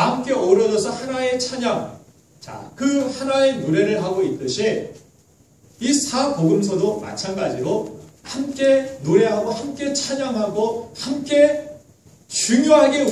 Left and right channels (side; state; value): both; identical; correlation 1.00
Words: 함께 어우러져서 하나의 찬양, 자, 그 하나의 노래를 하고 있듯이 이 4복음서도 마찬가지로 함께 노래하고 함께 찬양하고 함께 중요하게